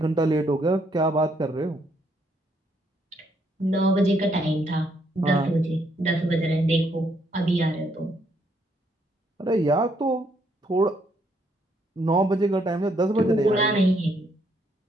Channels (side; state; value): both; normal; correlation 0.72